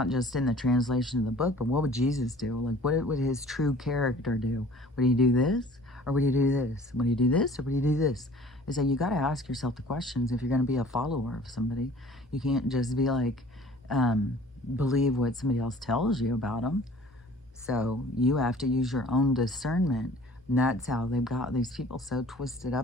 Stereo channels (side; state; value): both; normal; correlation 0.49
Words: just in the translation of the book, but what would Jesus do? Like, what would his true character do? Would he do this, or would he do this? Would he do this, or would he do this? Is that you got to ask yourself the questions if you're going to be a follower of somebody. You can't just be like, believe what somebody else tells you about them. So you have to use your own discernment. And that's how they've got these people so twisted